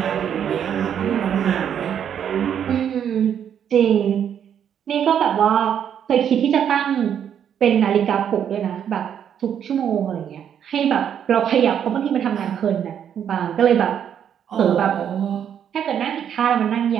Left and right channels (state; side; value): quieter; left; 8.9 dB